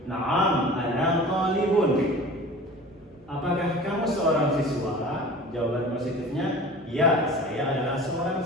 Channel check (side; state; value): both; normal; correlation 0.40